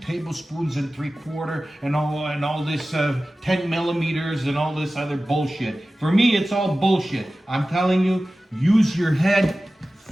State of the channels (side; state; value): both; normal; correlation 0.96